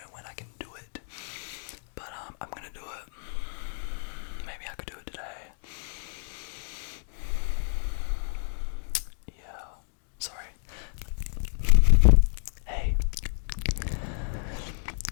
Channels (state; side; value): silent; right; digital silence